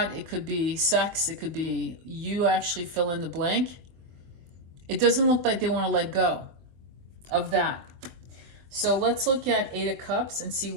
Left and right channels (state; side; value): late; left; 23 ms